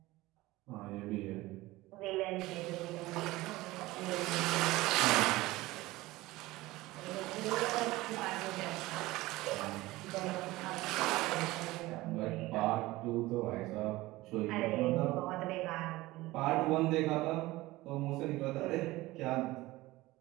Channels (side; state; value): left; quieter; 19.0 dB